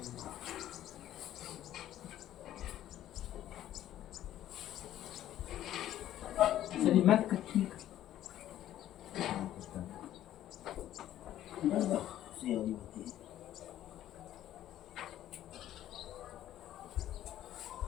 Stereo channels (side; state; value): right; quieter; 12.5 dB